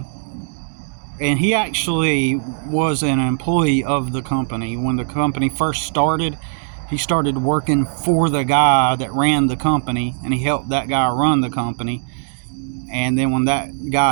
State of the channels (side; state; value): left; silent; digital silence